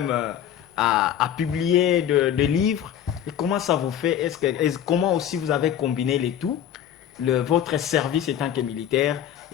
à publier des livres. Et comment ça vous fait? Comment aussi vous avez combiné les tout, votre service étant que militaire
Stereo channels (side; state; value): right; quieter; 10.1 dB